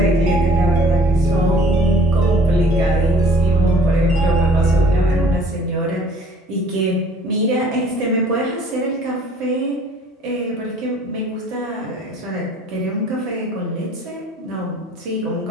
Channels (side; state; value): both; normal; correlation 0.54